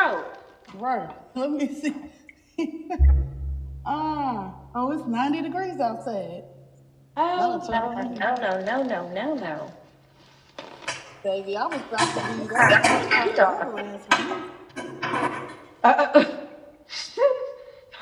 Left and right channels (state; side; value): identical; both; correlation 1.00